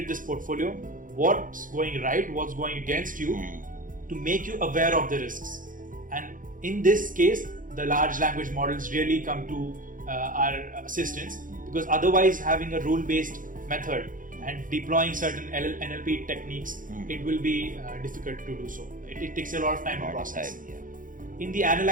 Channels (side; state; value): left; late; 0.39 ms